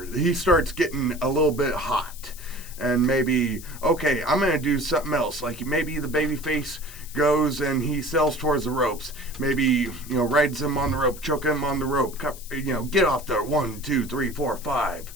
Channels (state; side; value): noise; left; hiss, 16 dB below the sound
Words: He starts getting a little bit hot. And maybe, okay, I'm going to do something else. Like maybe the baby face goes and he sells towards the ropes. Maybe, rides him on the rope, choke him on the rope. Get off there. 1, 2, 3, 4, 5.